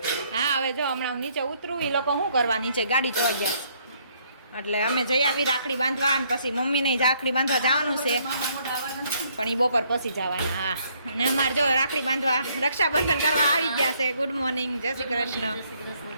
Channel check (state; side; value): inverted; both; correlation -0.68